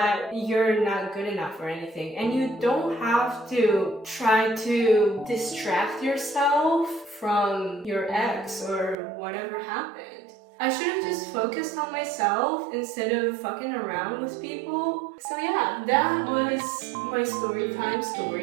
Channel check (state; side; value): drops out; left; at 9.0 s